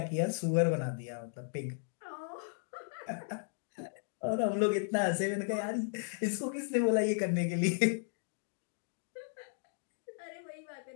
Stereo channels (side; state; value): right; silent; digital silence